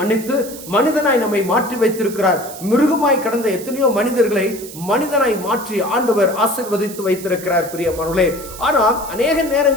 மனிதனாய் நம்மை மாற்றி வைத்திருக்கிறார். மிருகமாய் கடந்த எத்தனையோ மனிதர்களை மனிதனாய் மாற்றி ஆண்டவர் ஆசீர்வதித்து வைத்திருக்கிறார். பிரியமானவர்களே, ஆனால் அநேக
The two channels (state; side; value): noise; right; hiss, 14 dB below the sound